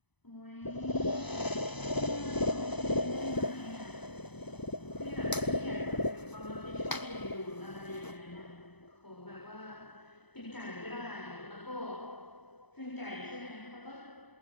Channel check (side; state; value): right; late; 0.99 ms